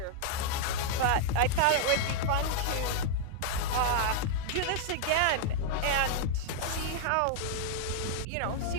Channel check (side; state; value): both; different; correlation -0.01